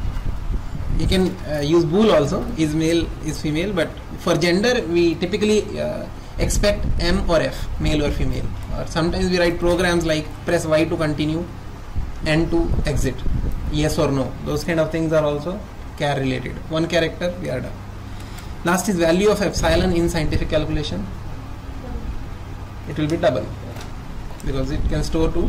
You can use bool also, is male, is female, but for gender we typically expect M or F, male or female. Or sometimes we write programs like press Y to continue, N to exit, yes or no. Those kind of things are also char related. One character, we are done. Last is value of epsilon in scientific calculation. It will be double because it can store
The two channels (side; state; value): both; identical; correlation 1.00